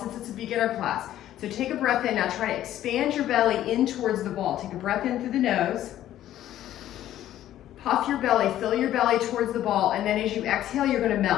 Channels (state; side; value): quieter; right; 12.6 dB